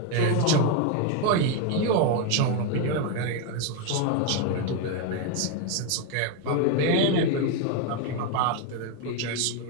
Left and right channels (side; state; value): both; different; correlation 0.01